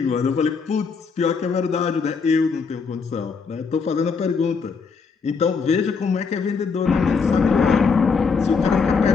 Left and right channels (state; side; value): quieter; right; 5.2 dB